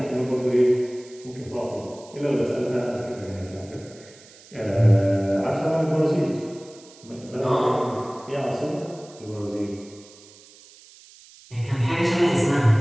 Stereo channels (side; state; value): right; noise; hiss, 23 dB below the sound